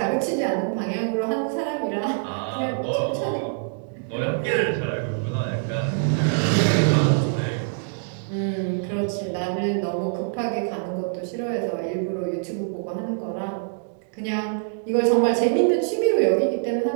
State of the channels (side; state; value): left; silent; digital silence